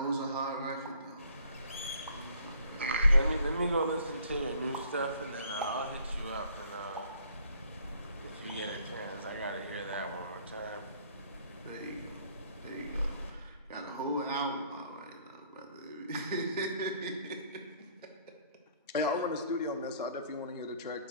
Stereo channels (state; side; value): inverted; both; correlation -0.60